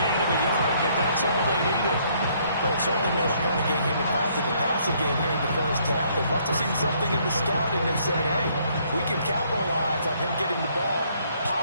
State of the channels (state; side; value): inverted; both; correlation -0.66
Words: of a yard, but that's all they needed. But it certainly made a point of getting him involved in the passing game here in the first half. They must have seen something in the scouting that said, hey, we can capitalize on him getting the ball